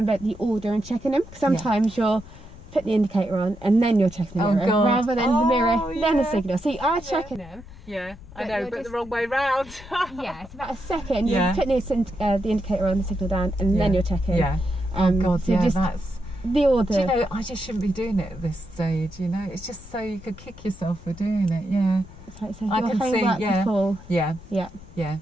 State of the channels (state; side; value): noise; left; rumble, 18 dB below the sound